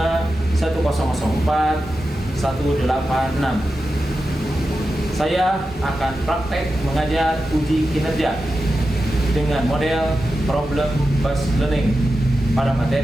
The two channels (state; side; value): normal; both; correlation 0.91